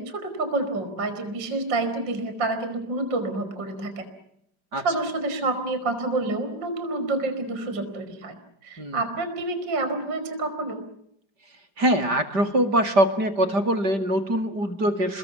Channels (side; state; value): left; late; 5.0 ms